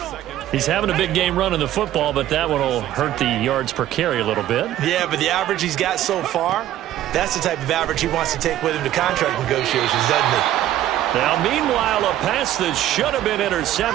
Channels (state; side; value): quieter; left; 12.9 dB